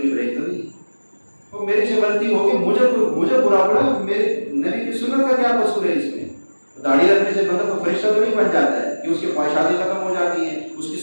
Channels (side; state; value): both; inverted; correlation -1.00